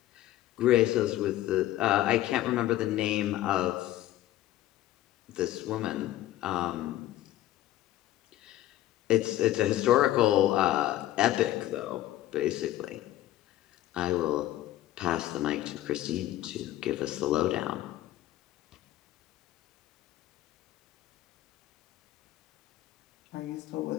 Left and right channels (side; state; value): right; quieter; 14.3 dB